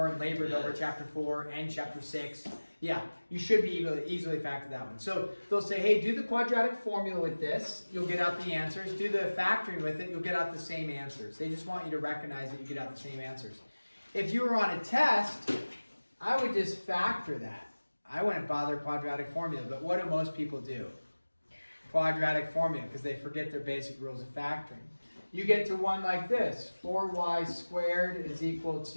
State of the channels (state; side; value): inverted; both; correlation -1.00